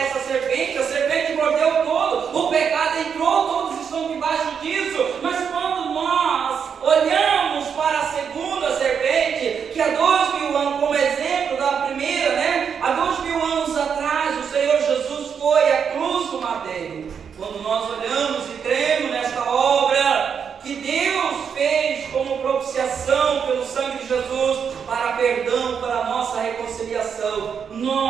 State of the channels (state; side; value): quieter; left; 7.0 dB